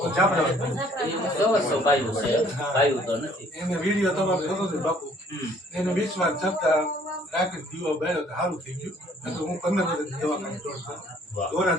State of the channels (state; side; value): normal; both; correlation 0.59